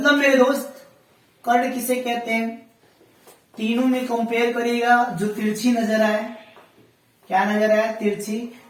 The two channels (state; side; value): identical; both; correlation 1.00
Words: मेरे दोस्त, कर्ण किसे कहते हैं, तीनों में कंपेयर करिएगा, जो तिरछी नजर आए, क्या नजर आए, तिरछी,